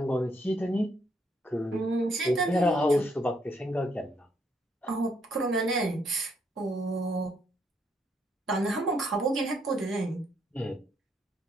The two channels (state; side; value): normal; both; correlation 0.73